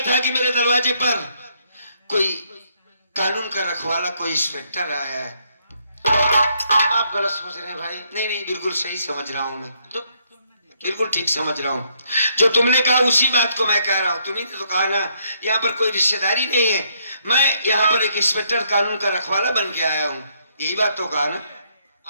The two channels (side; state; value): both; inverted; correlation -0.72